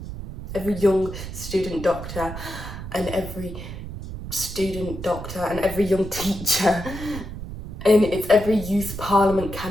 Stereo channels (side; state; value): right; noise; rumble, 9 dB below the sound